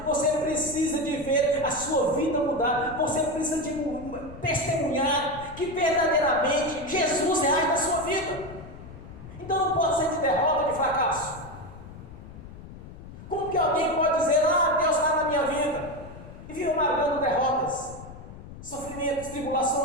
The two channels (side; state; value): left; noise; rumble, 15 dB below the sound